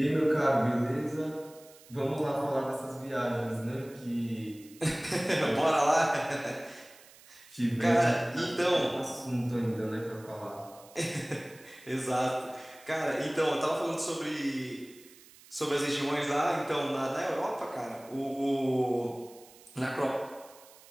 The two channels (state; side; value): noise; right; hiss, 23 dB below the sound